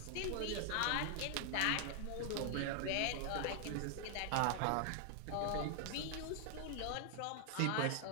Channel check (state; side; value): different; both; correlation 0.00